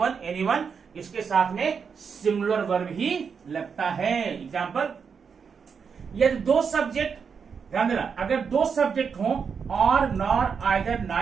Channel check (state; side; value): quieter; left; 6.2 dB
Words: anyone, इसके साथ में सिंगुलर वर्ब ही लगता है। एग्जाम्पल, यदि दो सब्जेक्ट, ध्यान देना, अगर दो सब्जेक्ट हो और नॉर, आइदर,